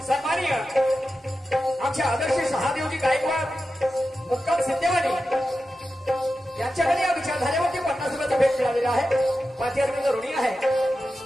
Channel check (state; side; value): normal; both; correlation 0.92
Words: सन्माननीय आमच्या आदर्श शहादेवजी गायकवाड मुक्काम सिद्धेवाडी यांच्याकडे या विचारधारेवरती 50 रुपयाचा भेट मिळालेला आहे. 5000 रुपये ऋणी आहे.